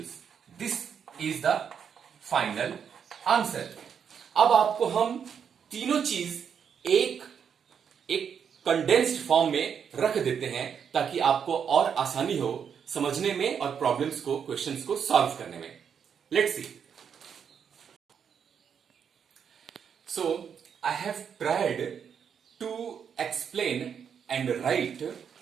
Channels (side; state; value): left; quieter; 7.4 dB